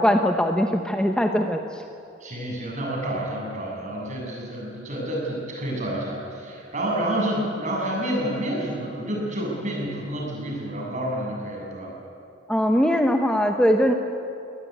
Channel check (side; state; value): both; normal; correlation 0.67